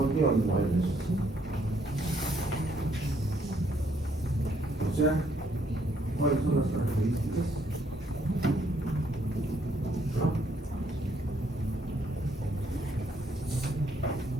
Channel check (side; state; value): both; normal; correlation 0.70